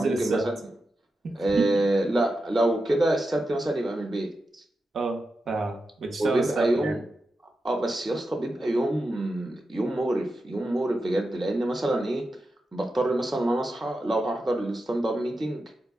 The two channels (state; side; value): normal; both; correlation 0.90